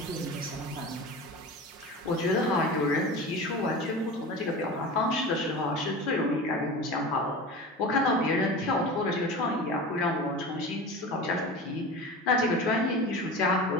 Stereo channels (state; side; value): normal; both; correlation 0.32